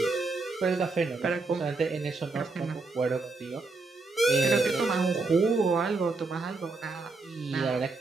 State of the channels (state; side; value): quieter; left; 3.7 dB